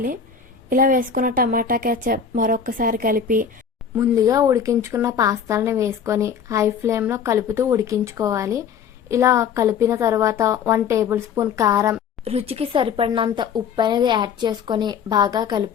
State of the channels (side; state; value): right; quieter; 7.0 dB